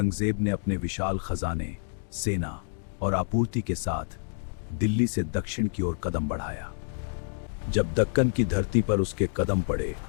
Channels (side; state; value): right; silent; digital silence